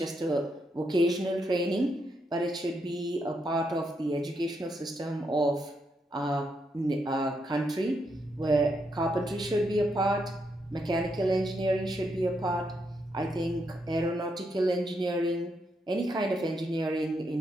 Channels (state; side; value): normal; both; correlation 0.80